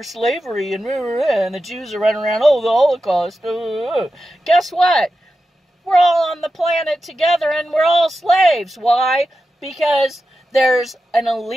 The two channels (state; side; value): normal; both; correlation 0.91